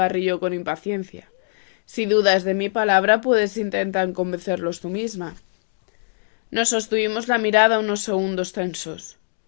con impaciencia. Si dudas de mi palabra, puedes intentar convencerlos tú misma. Nos sostuvimos la mirada unos segundos tensos.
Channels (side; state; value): right; silent; digital silence